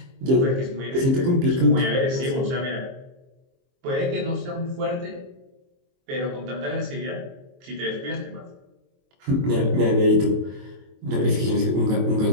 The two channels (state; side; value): late; left; 22 ms